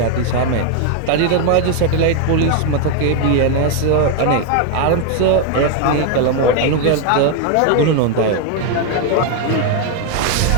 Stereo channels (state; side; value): different; both; correlation 0.01